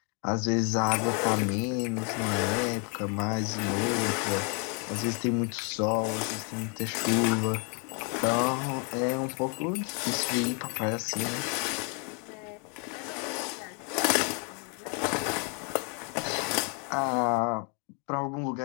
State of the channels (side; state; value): right; quieter; 37.5 dB